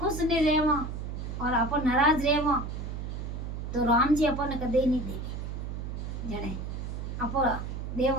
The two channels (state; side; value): noise; right; hum, 5 dB below the sound